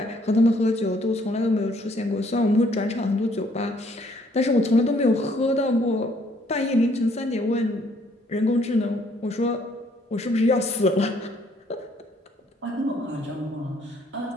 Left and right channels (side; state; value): both; normal; correlation 0.64